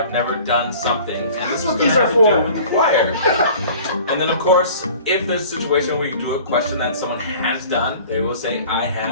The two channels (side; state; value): both; inverted; correlation -0.46